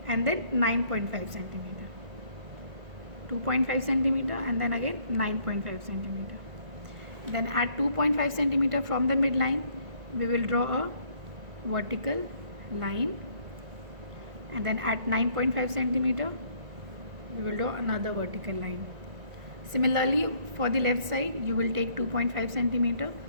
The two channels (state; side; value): late; left; 1.9 ms